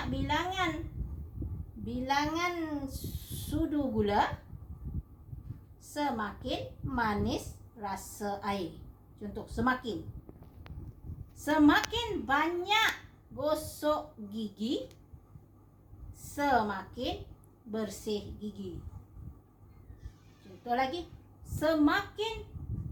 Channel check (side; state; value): both; identical; correlation 1.00